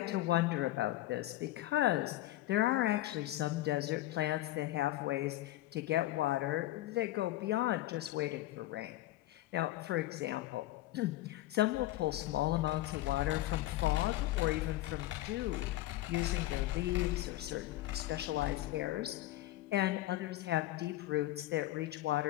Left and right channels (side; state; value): right; quieter; 16.0 dB